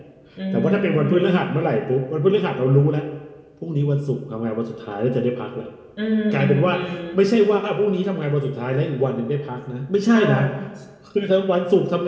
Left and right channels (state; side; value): identical; both; correlation 1.00